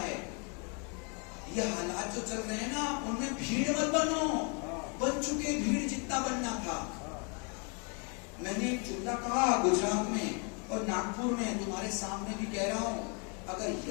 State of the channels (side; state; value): right; quieter; 35.6 dB